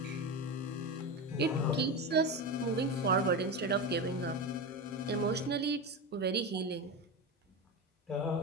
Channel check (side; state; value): both; normal; correlation 0.19